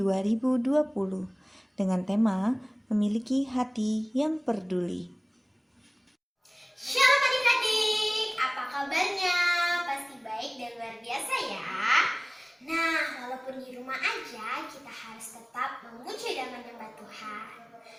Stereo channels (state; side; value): identical; both; correlation 1.00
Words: dengan tema memiliki hati yang peduli. Shalom adik-adik, apa kabarnya? Pasti baik dan luar biasa ya. Nah, walaupun di rumah aja, kita harus tetap memuji dan menyembah Tuhan.